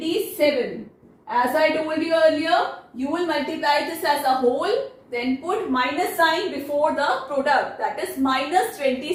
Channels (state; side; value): identical; both; correlation 1.00